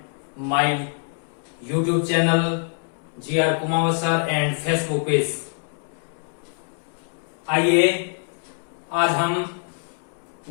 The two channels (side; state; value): right; silent; 62 dB below the other